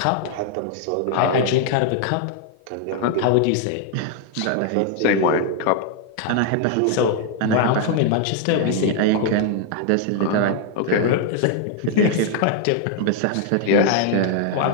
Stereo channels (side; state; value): both; different; correlation 0.00